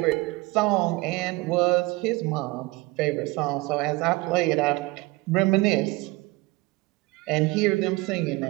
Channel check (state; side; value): quieter; left; 22.4 dB